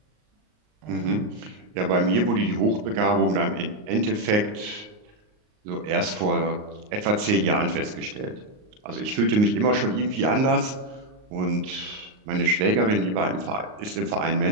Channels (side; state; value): left; late; 38 ms